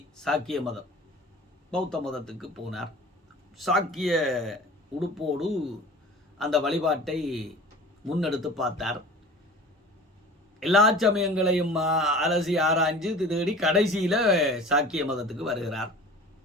சாக்கிய மதம். பௌத்த மதத்துக்கு போனார். சாக்கிய உடுப்போடு அந்த வழிபாட்டை முன்னெடுத்து பார்த்தார். எல்லா சமயங்களையும் அலசி ஆராய்ஞ்சு தேடி கடைசியில சாக்கிய மதத்துக்கு வருகிறார்.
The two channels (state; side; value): normal; both; correlation 0.41